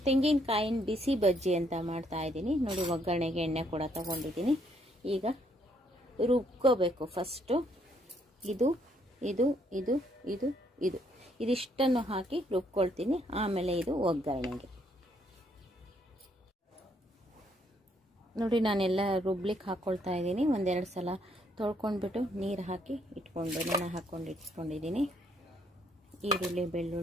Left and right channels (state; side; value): normal; both; correlation 0.70